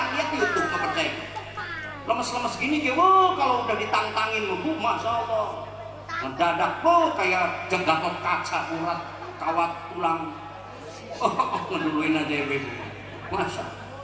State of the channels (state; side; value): identical; both; correlation 1.00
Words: lihat YouTube nggak percaya. Lemes-lemes gini dia, wow, kalau udah ditantangin Bu, masya Allah, mendadak Bu kayak Gatot kaca, urat, kawat tulang. Ngeduluin aja Ibu, masya.